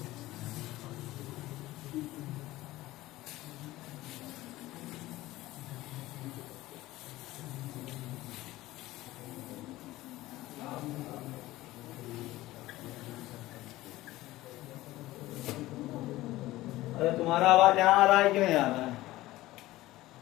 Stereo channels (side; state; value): right; quieter; 17.2 dB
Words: अरे तुम्हारा आवाज यहाँ आ रहा है क्यों नहीं आ रहा है।